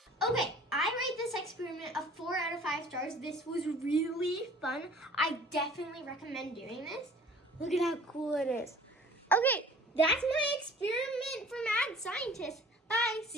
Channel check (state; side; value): normal; both; correlation 0.49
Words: Okay, I rate this experiment a 4 out of 5 stars. This was really fun. I definitely recommend doing this. Look at how cool it is. Okay, that's my experiment for Mad Scientist. Bye,